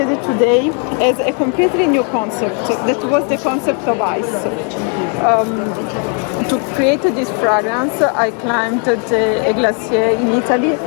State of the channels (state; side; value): quieter; right; 39.2 dB